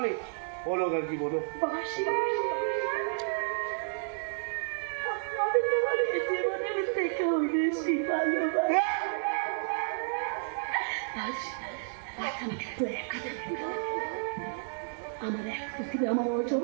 বলো আর কি বলো। বাসি আমি তোমার জীবনের থেকেও বেশি ভালোবাসি। আজ আমাকে একটু একা থাকতে দাও। আমার এক পৃথিবী, আমার অর্জন,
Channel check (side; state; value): left; silent; digital silence